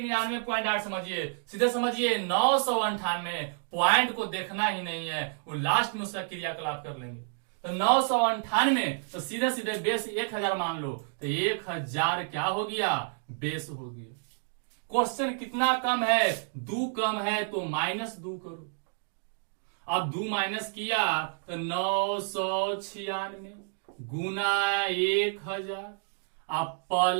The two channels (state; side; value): silent; left; 58 dB below the other